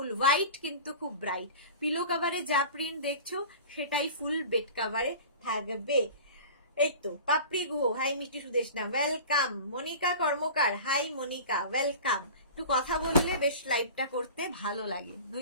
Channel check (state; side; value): inverted; both; correlation -0.37